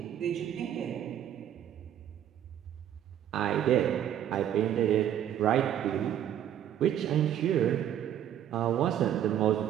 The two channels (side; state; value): left; quieter; 10.5 dB